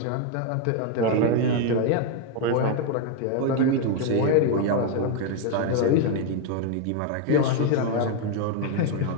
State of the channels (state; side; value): different; both; correlation 0.01